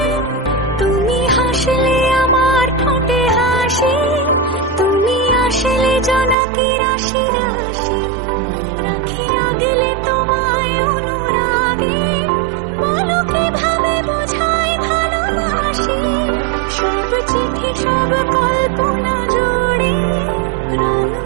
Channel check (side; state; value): left; drops out; at 6.4 s